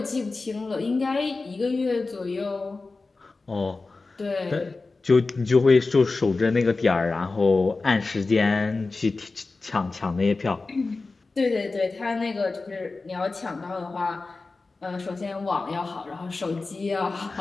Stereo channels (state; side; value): quieter; right; 3.7 dB